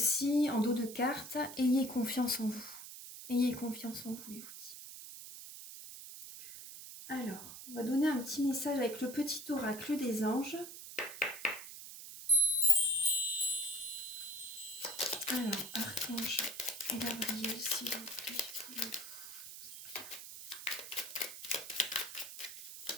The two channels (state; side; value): noise; right; hiss, 12 dB below the sound